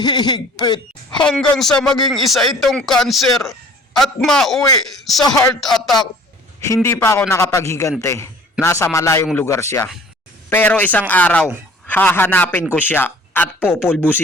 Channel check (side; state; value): both; normal; correlation 0.50